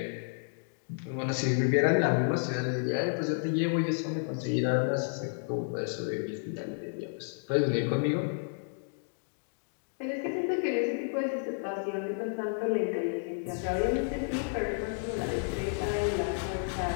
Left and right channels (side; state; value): right; silent; digital silence